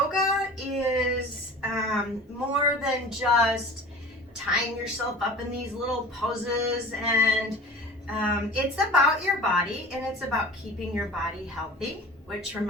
is more than just tying yourself up in these little poses, and it's about your body, and it's about keeping your body healthy. Which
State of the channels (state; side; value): normal; both; correlation 0.39